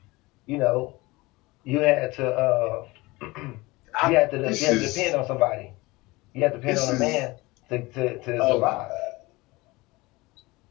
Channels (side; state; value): right; quieter; 22.1 dB